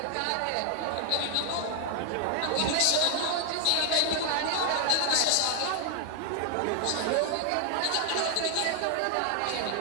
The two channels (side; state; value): both; different; correlation 0.00